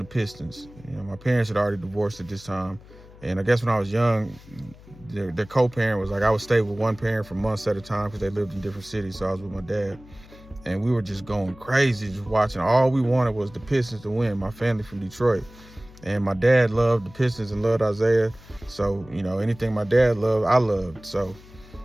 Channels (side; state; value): left; noise; hum, 21 dB below the sound